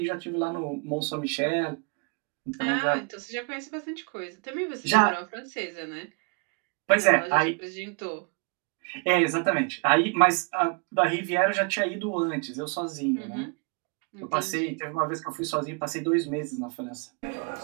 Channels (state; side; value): quieter; left; 35.1 dB